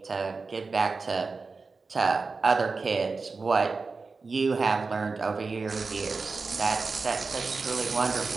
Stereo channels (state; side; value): quieter; left; 4.2 dB